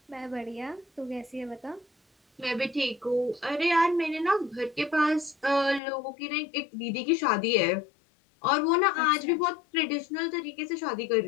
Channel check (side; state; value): right; drops out; at 5.8 s